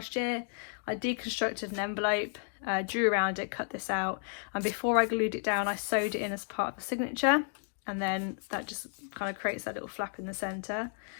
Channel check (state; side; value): silent; right; 56 dB below the other